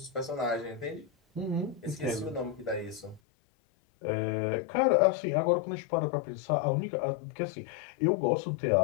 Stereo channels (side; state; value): right; drops out; at 3.2 s